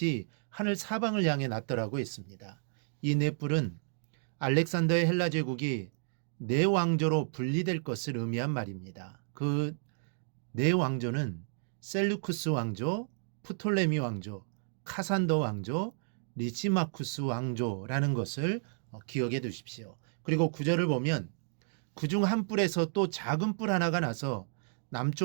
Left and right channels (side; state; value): left; silent; digital silence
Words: 하늘 사방을 향해 났더라고 했습니다. 이 네 뿔은 알렉산더의 헬라 제국이 네 왕조로 분리될 것을 의미한 말입니다. 그 네 왕조는 셀루쿠스 왕조, 프톨레미 왕조, 카산더 왕조, 리시마쿠스 왕조라는 것을 기억해 두십시오. 그리고 구절을 보면 그중 한 뿔에서 또 작은 뿔 하나가 나서